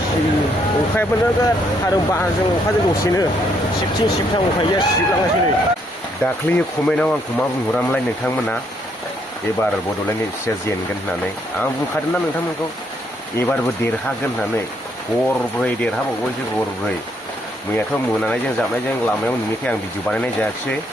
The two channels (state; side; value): normal; both; correlation 0.72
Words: अखायाबो नोगोद आरो बारजों अखाजों दसेनो सिबथिं सिबथां उफाय गैया सिबलांगासिनो नै दाख्लै कमेन्टआव आंखौ मा बुंहरामोनलाय नोंथांमोना एबार बड'लेण्ड एफसिआ जेनगोन होननानै आं बुंखादोंना नोंथांमोनखौ एबारबो देरहागोन होननानै गरब्रै देरहाबावबायसो गरब्रै मैयाथ' मोनानायजों जाबनायजों लामायाव नुनायखाय आं भिडिअ बानायनाय जायाखिसै